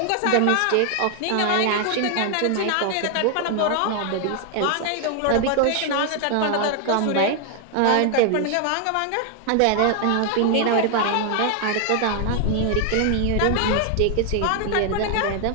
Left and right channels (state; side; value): different; both; correlation 0.00